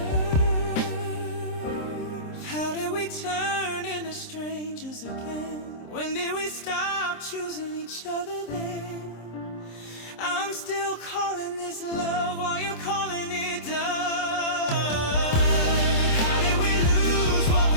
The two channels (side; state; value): right; late; 26 ms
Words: How did we turn into strangers again? When did we stop choosing each other then? I'm still calling this love while you're calling it done. How did we lose what